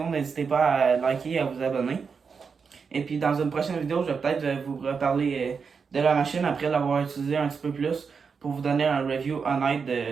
n'hésitez pas à liker et à vous abonner. Et puis, dans une prochaine vidéo, je vais peut-être vous reparler de la machine après l'avoir utilisée un petit peu plus pour vous donner un review honnête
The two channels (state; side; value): quieter; left; 5.7 dB